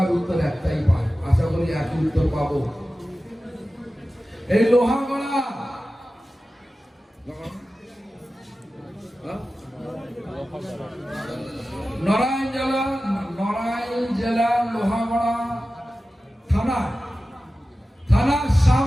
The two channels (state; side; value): normal; both; correlation 0.95